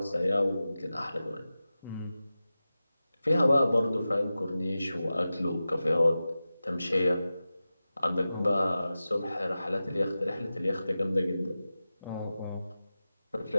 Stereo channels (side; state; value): both; inverted; correlation -0.94